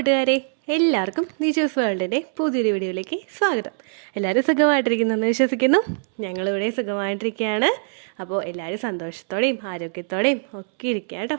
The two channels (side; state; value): left; silent; 64 dB below the other